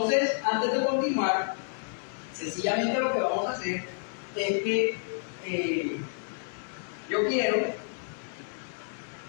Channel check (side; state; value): right; silent; digital silence